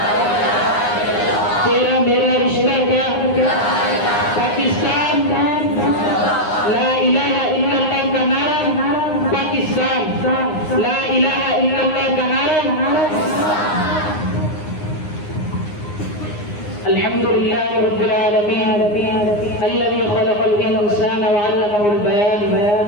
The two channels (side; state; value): right; late; 9.7 ms